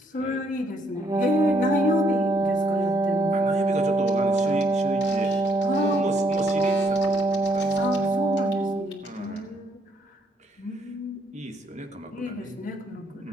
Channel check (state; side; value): normal; both; correlation 0.70